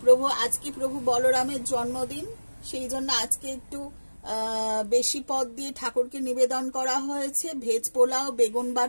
আজকে প্রভু বলরামের জন্মদিন, সেই জন্য আজকে একটু বেশি পদ দিয়ে ঠাকুরকে নিবেদন করা হয়েছে। ভেজ পোলাও, বেগুন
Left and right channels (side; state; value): both; inverted; correlation -1.00